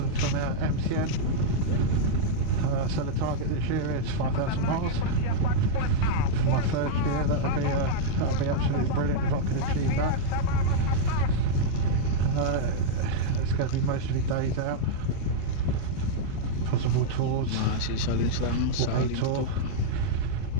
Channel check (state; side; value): different; both; correlation -0.02